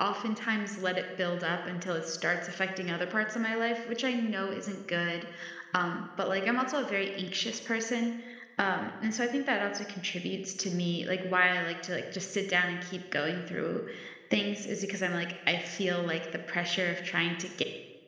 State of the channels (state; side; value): identical; both; correlation 1.00